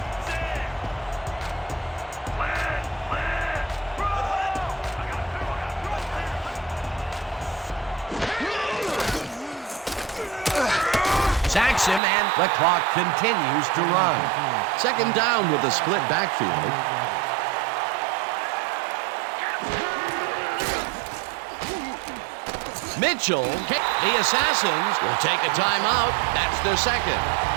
sacks him, and the clock continues to run. Second down with a split backfield. Mitchell, the Assassins will take a timeout. That's their second.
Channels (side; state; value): left; drops out; at 12.0 s